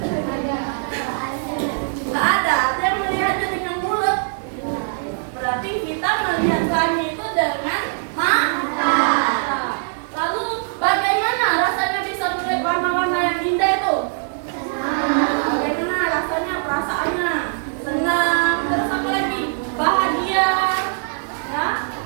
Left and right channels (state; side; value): silent; left; digital silence